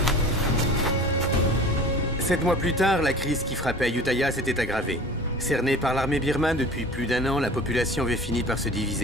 Sept mois plus tard, la crise qui frappait Ayutthaya s'était aggravée. Cernée par l'armée birmane depuis plus d'un an, la population avait fini par se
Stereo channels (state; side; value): normal; both; correlation 0.41